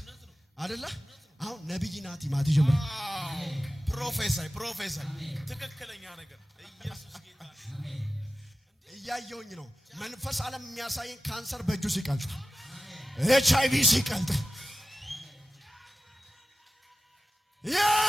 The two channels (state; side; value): normal; both; correlation 0.94